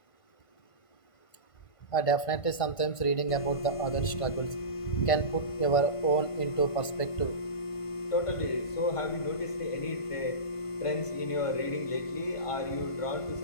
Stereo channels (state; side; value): late; right; 1.5 ms